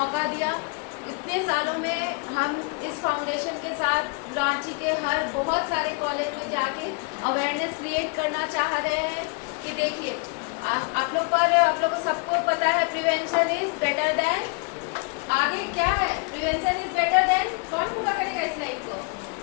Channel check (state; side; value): quieter; right; 31.8 dB